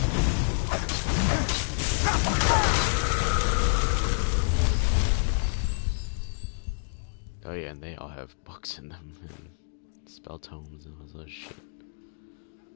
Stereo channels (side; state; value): right; silent; digital silence